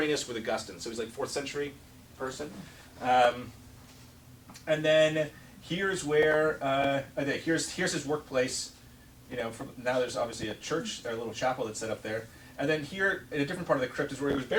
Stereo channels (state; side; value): identical; both; correlation 1.00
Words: with Augustine, so he's like 4th century person. And then here's where here's his workplace. You know, now there's obviously a church, a little chapel that's set up there. And then here, in a different part of the crypt, is where he was